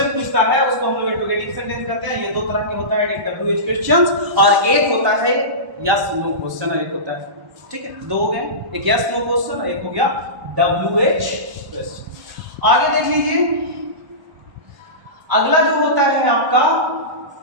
पूछता है उसको हम लोग इंट्रोगेटिव सेंटेंस कहते हैं। ये दो तरह के होता है, एक WH क्वेश्चंस और एक होता है यस नो क्वेश्चन, और एक होता है, ठीक है, दो हो गए, एक यस नो क्वेश्चन और एक हो गया WH क्वेश्चन। आगे देख लीजिए, अगला जो होता है आपका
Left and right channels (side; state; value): left; late; 1.0 ms